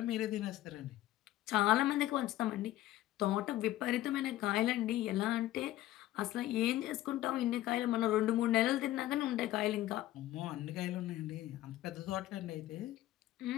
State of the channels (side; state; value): right; quieter; 14.9 dB